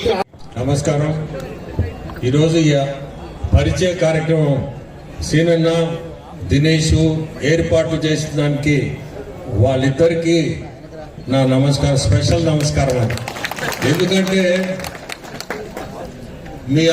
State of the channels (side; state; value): both; identical; correlation 1.00